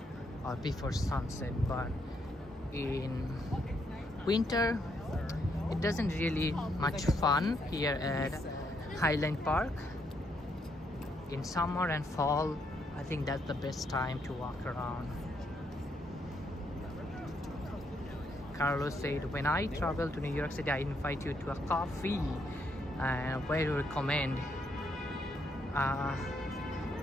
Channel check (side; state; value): both; normal; correlation 0.75